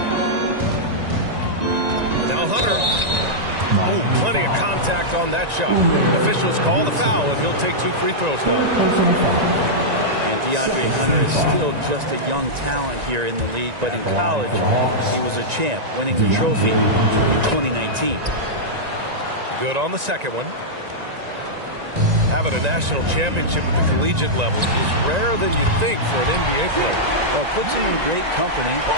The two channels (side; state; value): left; late; 1.9 ms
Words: Now Hunter. Oh, plenty of contact on that shot. Officials call the foul, and he'll take 2 free throws now. And DeAndre Hunter is still just a young talent here in the league, but in college, he was a champ, winning the trophy in 2019. Good on the second one. Having a national championship at the collegiate level is rarer than you'd think for an NBA player. Well, it puts him in great company,